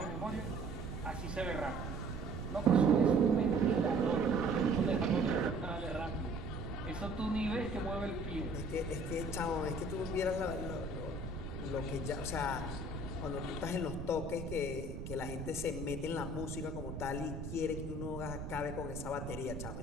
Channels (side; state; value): right; noise; rumble, 7 dB below the sound